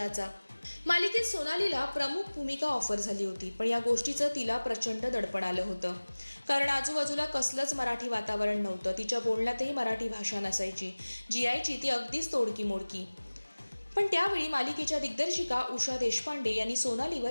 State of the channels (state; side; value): inverted; both; correlation -1.00